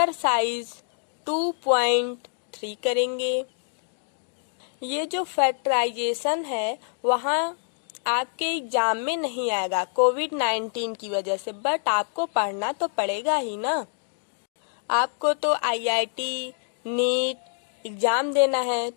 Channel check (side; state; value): right; silent; digital silence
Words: 2.3 करेंगे। ये जो factorisation है वहाँ आपके एग्जाम में नहीं आएगा कोविड-19 की वजह से, बट आपको पढ़ना तो पड़ेगा ही ना। आपको तो IIT, नीट एग्जाम देना है,